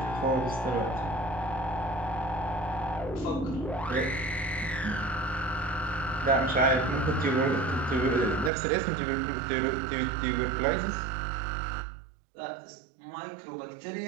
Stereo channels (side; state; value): left; drops out; at 8.5 s